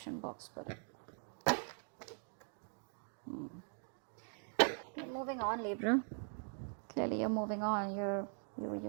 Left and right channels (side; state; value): left; silent; 50 dB below the other